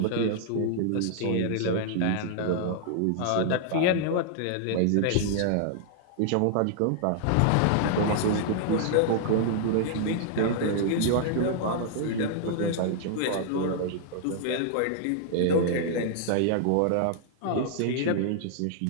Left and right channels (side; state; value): both; different; correlation -0.01